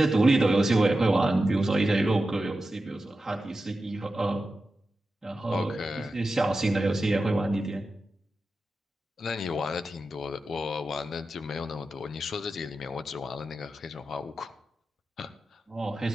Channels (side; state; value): both; normal; correlation 0.92